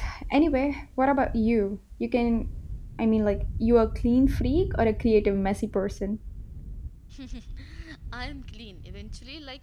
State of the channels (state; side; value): identical; both; correlation 1.00